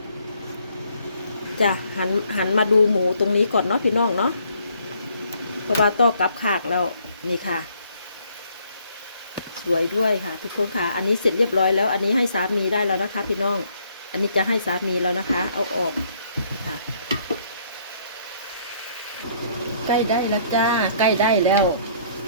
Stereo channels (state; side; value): inverted; both; correlation -0.65